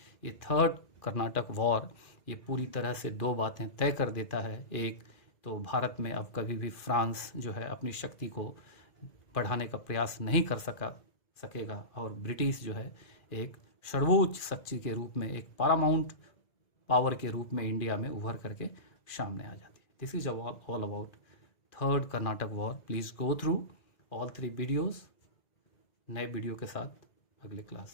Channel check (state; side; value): late; right; 2.4 ms